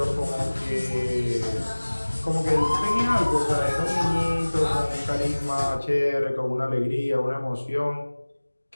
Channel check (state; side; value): inverted; both; correlation -1.00